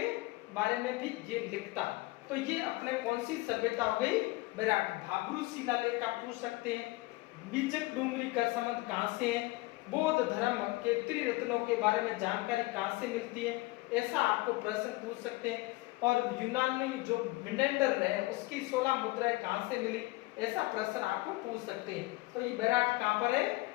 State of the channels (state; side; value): quieter; right; 21.3 dB